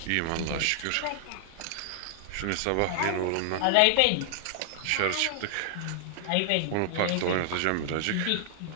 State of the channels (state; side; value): different; both; correlation 0.00